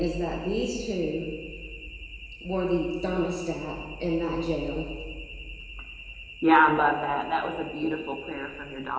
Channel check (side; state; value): both; identical; correlation 1.00